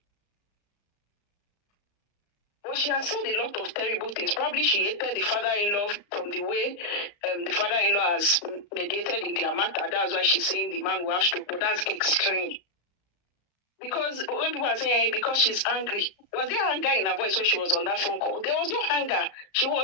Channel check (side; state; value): right; late; 34 ms